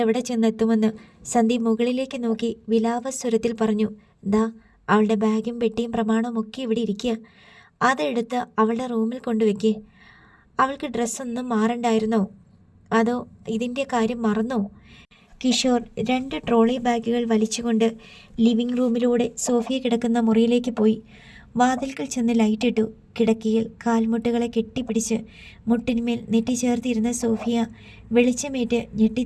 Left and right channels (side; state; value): both; identical; correlation 1.00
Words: ചെന്നെത്തുമെന്ന്. സന്ദീപ് മുകളിലേക്ക് നോക്കി വിലാപസ്വരത്തിൽ പറഞ്ഞു. ദാ, അവളുടെ ബാഗും പെട്ടിയും പ്രമാണവും ഒക്കെ ഇവിടെ ഇരിക്കുക. അതെടുത്ത് അവളുടെ റൂമിൽ കൊണ്ടുവയ്ക്കേ. അവൾക്ക് ഡ്രസ്സൊന്നും മാറണ്ടായിരുന്നോ? അതോ ഇതിൻ്റെ കാര്യം മറന്നോ? കിഷോർ 2 ട്രോളി ബാഗുകൾ വലിച്ചുകൊണ്ട് ലിവിംഗ് റൂമിലൂടെ സോഫിയ കിടക്കുന്ന മുറിയിലേക്ക് പോയി. വാതിൽക്കൽ ചെന്ന് ലൈറ്റിട്ടു. കിടക്കയിൽ കാൽമുട്ടുകളെ കെട്ടിപ്പിടിച്ച് മുട്ടിന്മേൽ നെറ്റിച്ചേർത്തിരുന്ന സോഫിയ വെളിച്ചമേറ്റ്